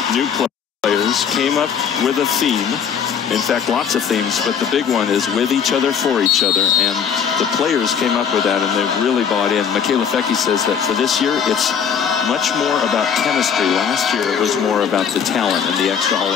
new players, came up with a theme. In fact, lots of themes, but the big one is with each other, for each other, and the players came up with that, and they've really bought in. Michaela Fecke says that for this year, it's much more about chemistry. Last year, it was more about the talent and the extra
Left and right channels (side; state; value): right; quieter; 7.3 dB